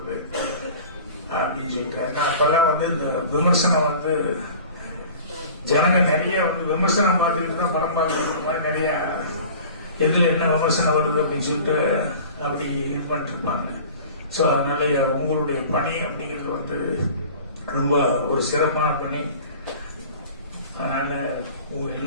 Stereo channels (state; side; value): inverted; both; correlation -0.42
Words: அப்படின்னு சொல்லிட்டு. ஏன்னா அப்பெல்லாம் வந்து இந்த விமர்சனம் வந்து ஜனங்க நிறைய வந்து விமர்சனம் பார்த்துக்கிட்டு தான் படம் பார்க்கறது மாதிரி நிறைய எதுல என்ன விமர்சனம் வருது அப்படின்னு சொல்லிட்டு அப்படி இது பண்ணிட்டு இருப்பாங்க. ஸோ அதனால உங்களுடைய பணி அப்படிங்கிறது வந்து ரொம்ப ஒரு சிறப்பான பணி. அதனால உங்க